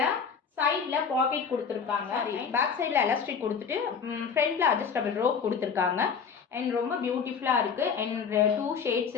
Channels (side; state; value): right; quieter; 6.3 dB